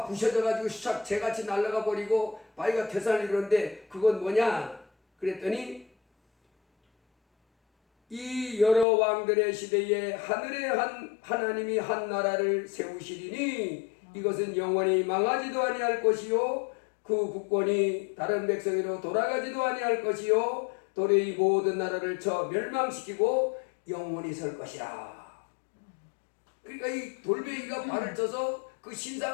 부셔져 가지고 샥 재같이 날아가 버리고 바위가 태산을 이루는데 그건 뭐냐? 그랬더니 이 여러 왕들의 시대에 하늘에 하나님이 한 나라를 세우시리니 이것은 영원히 망하지도 아니할 것이요 그 국권이 다른 백성으로 돌아가지도 아니할 것이요 도래의 모든 나라를 쳐 멸망시키고 영원히 설 것이라. 그러니까 이 돌멩이가 발을 쳐서 그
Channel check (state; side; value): drops out; right; at 8.8 s